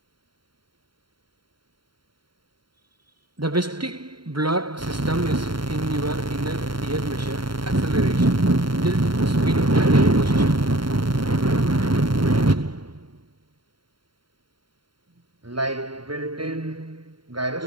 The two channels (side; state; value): left; late; 0.73 ms